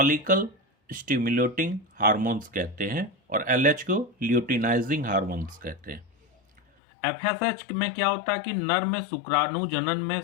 स्टिमुलेटिंग हार्मोन्स कहते हैं और एलएच को ल्यूटिनाइजिंग हार्मोन्स कहते हैं। एफएसएच में क्या होता है कि नर में शुक्राणु जनन में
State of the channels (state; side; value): drops out; right; at 6.6 s